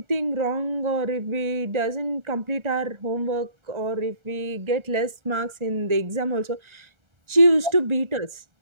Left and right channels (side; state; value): left; late; 1.4 ms